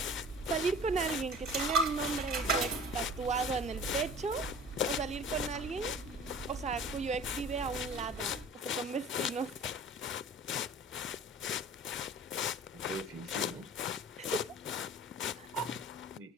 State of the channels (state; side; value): normal; both; correlation 0.43